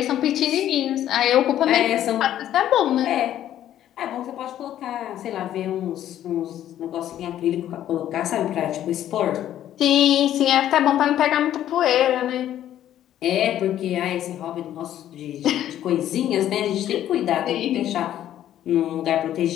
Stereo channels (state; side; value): quieter; right; 11.7 dB